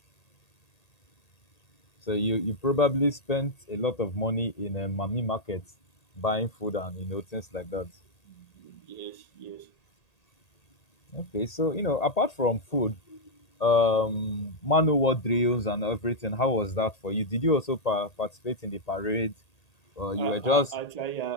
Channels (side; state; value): right; late; 1.8 ms